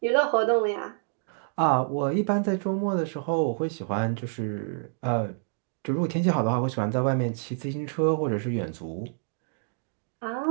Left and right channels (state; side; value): silent; left; digital silence